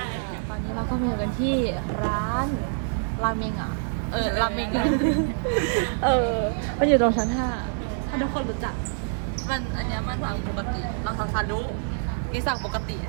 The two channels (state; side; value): silent; left; digital silence